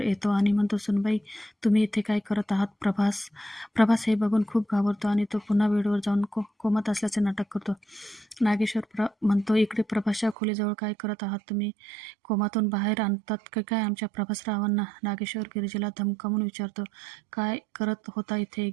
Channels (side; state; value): left; drops out; at 10.4 s